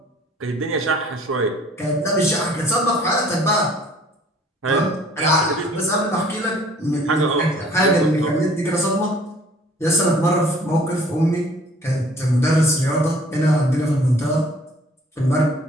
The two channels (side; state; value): both; normal; correlation 0.55